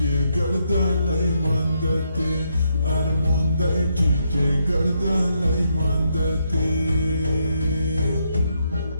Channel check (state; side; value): inverted; both; correlation -0.78